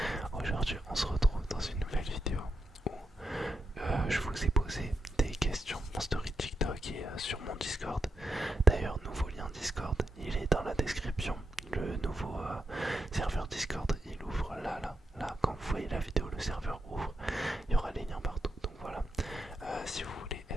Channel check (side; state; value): both; normal; correlation 0.84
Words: Aujourd'hui, on se retrouve dans une nouvelle vidéo où je vous ai posé des questions en story TikTok et sur mon Discord. D'ailleurs, nouveau lien Discord, il est dans la description. Le nouveau serveur Discord, il ouvre là. Quand vous voyez la vidéo, le serveur ouvre. Il y aura les liens partout. Donc voilà. Si vous voulez